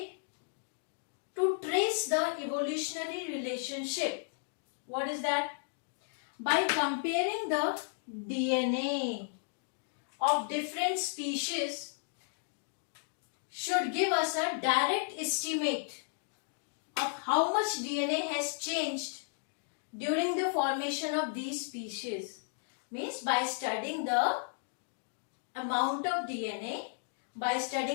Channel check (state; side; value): silent; right; digital silence